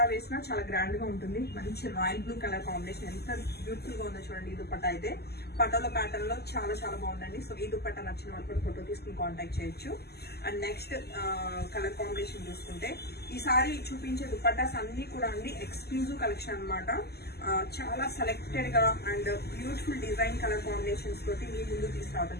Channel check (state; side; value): late; right; 0.46 ms